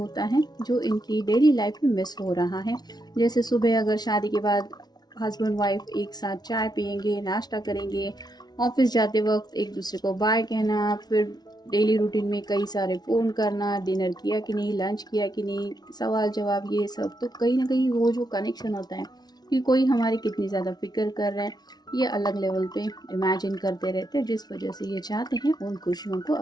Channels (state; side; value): late; right; 0.19 ms